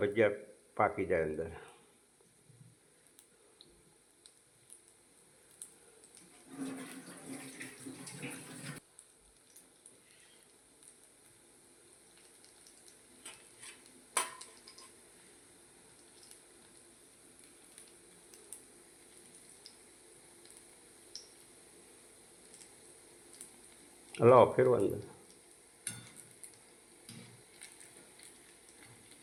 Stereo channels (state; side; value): identical; both; correlation 1.00